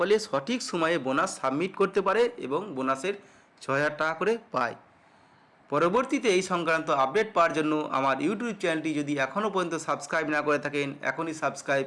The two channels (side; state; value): both; identical; correlation 1.00